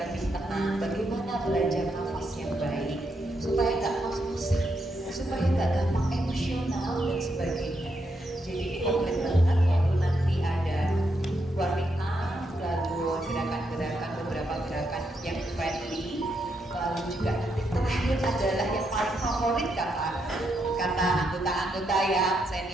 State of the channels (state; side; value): normal; both; correlation 0.80